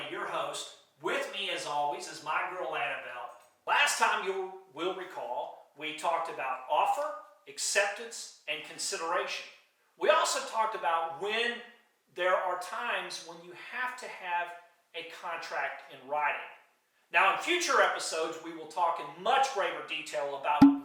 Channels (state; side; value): identical; both; correlation 1.00